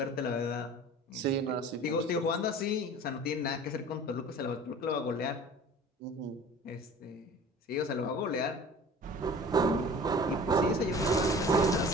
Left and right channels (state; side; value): normal; both; correlation 0.43